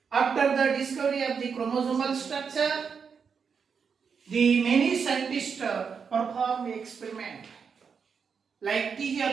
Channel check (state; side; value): quieter; left; 6.2 dB